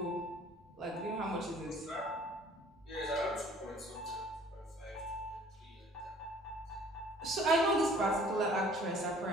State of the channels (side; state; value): both; normal; correlation 0.54